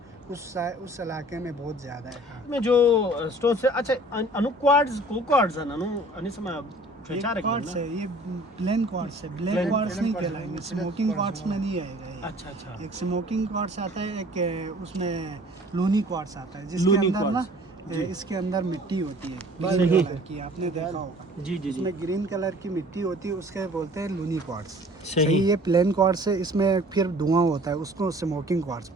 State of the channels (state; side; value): normal; both; correlation 0.50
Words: उस इलाके में बहुत ज़्यादा है। में जो स्टोन से अच्छा अनु क्वार्ट्ज को क्वार्ट्ज अनु अनिसमा ये फेचारक क्वार्ट्ज है, ये प्लेन क्वार्ट्ज है, ब्लैक Plain- क्वार्ट्ज नहीं कहलाएंगे, स्मोकिंग क्वार्ट्ज में नहीं आएगा ये। अच्छा अच्छा एक स्मोकिंग क्वार्ट्ज आता है, एक उसमें लूनी क्वार्ट्ज आता है, जिसके लूनी अंदर ना क्वार्ट्ज, जी। इसके अंदर मिट्टी होती है सही। ग्रीन कलर की, आपने देखा होगा। जी जी जी इसमें ग्रीन कलर की मिट्टी होती है, उसके बोलते हैं लूनी क्वार्ट्ज। सही। सही, ये प्लेन क्वार्ट्ज है, इसमें फिर धुआं होता है, उसको स्मोकिंग क्वार्ट्ज